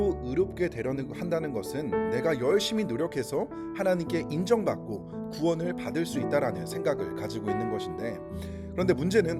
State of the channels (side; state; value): both; identical; correlation 1.00